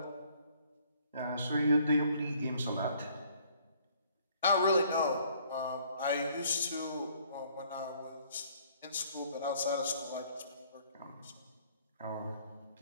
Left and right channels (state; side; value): inverted; both; correlation -0.61